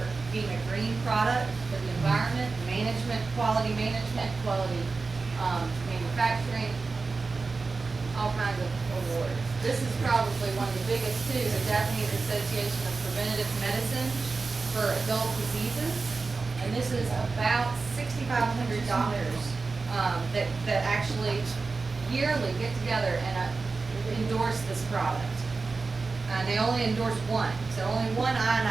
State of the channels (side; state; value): left; quieter; 4.1 dB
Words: being a green product for the environment, management, quality manufacturing, all kinds of awards. This is probably one of the biggest too, the Japanese Association of Preventative Medicine for Adult Diseases. And this is about 6,500 doctors that actually yearly get together and endorse this product. And they only endorse one, so only one